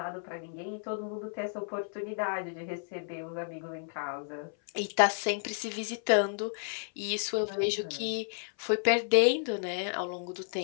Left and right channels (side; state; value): right; silent; 56 dB below the other